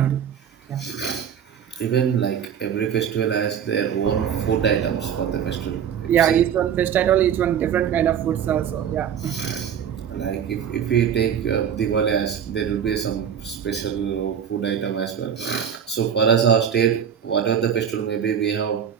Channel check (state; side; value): quieter; left; 8.4 dB